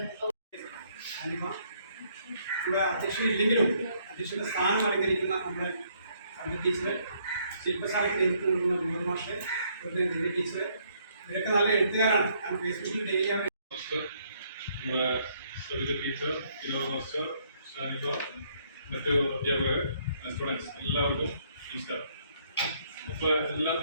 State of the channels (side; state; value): both; inverted; correlation -0.68